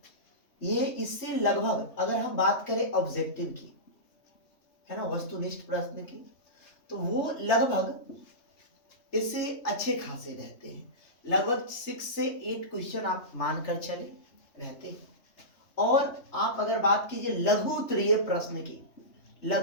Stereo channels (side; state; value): right; late; 3.2 ms